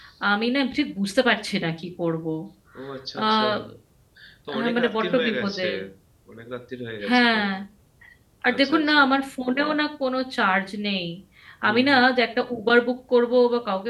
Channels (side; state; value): both; identical; correlation 1.00